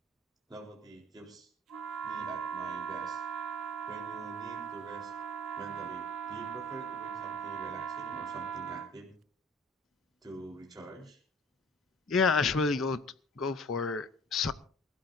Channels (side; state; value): both; normal; correlation 0.47